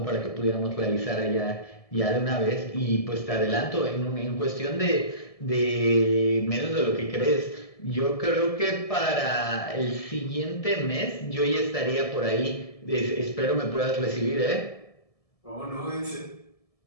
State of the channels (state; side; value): late; right; 1.7 ms